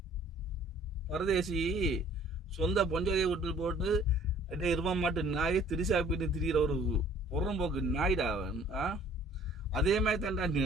பரதேசி சொந்த பொஞ்சாதியை விட்டு போட்டு இருவ மாட்டு நாயை திரிசா பின்னு திரிகிற ஒரு புறம்போக்கு நாய்டா அவன். அதே மாதிரி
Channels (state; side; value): normal; both; correlation 0.55